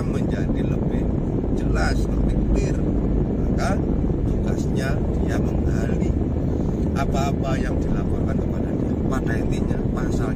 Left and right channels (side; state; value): both; identical; correlation 1.00